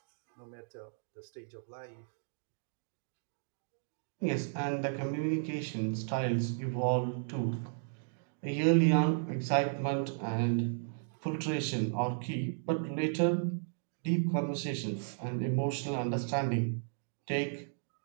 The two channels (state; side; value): silent; left; digital silence